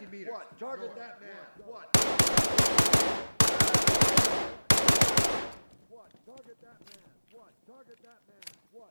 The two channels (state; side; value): inverted; both; correlation -1.00